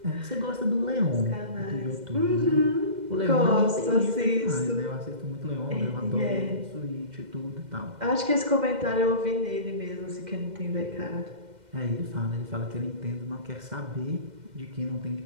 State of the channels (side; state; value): left; late; 2.1 ms